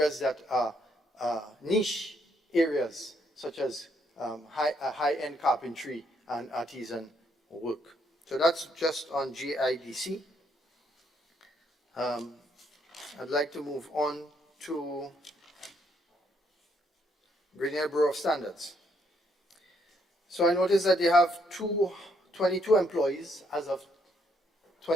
that are niche areas, such as high-end carpentry and artisan work. So that's just on GIDC. I'd like to move on to Green Bureau of Standards. So I noticed that they have 22 employees as of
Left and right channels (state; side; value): normal; both; correlation 0.72